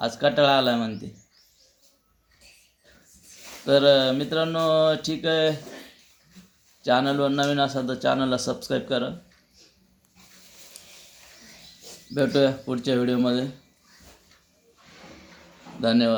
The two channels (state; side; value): identical; both; correlation 1.00